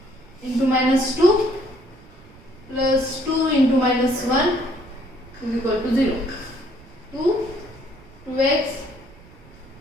into minus 2 plus 2 into minus 1 is equal to 0. 2x,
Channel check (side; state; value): right; noise; rumble, 23 dB below the sound